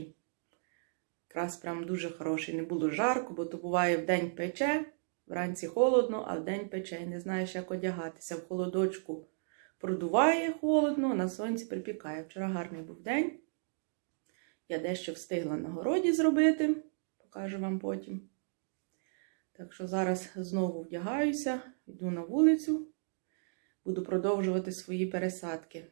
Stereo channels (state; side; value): silent; left; digital silence